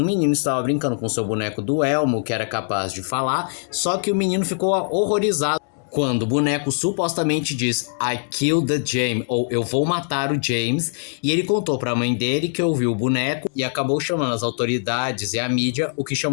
menino estava brincando com seu boneco do Elmo, que era capaz de falar, só que o menino ficou horrorizado quando o boneco supostamente diz I killed the James, ou eu vou matar o James, e ele contou para a mãe dele que ouviu o boneco e acabou chamando as autoridades e a mídia, o que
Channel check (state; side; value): silent; right; digital silence